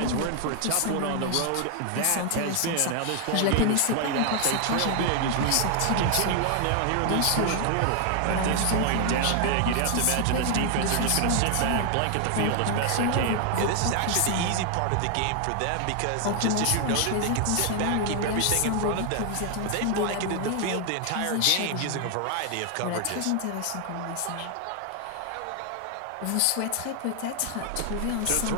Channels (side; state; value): both; different; correlation 0.00